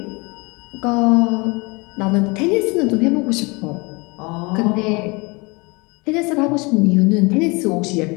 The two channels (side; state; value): right; quieter; 27.2 dB